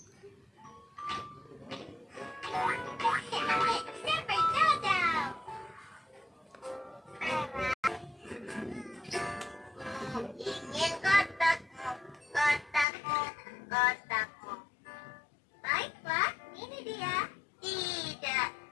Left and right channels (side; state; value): right; drops out; at 12.9 s